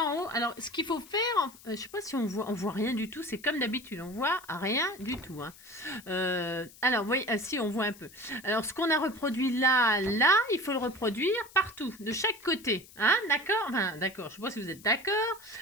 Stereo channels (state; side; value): noise; left; hiss, 21 dB below the sound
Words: en haut. Alors, ce qu'il faut faire, je sais pas si on voit rien du tout, c'est comme d'habitude, on voit rien du tout. Hein. Alors, vous voyez, si, on voit un peu. Alors, ce qu'on a reproduit là, il faut le reproduire partout, de chaque côté. Hein, d'accord? Enfin, d'accord, je sais pas si vous êtes d'accord.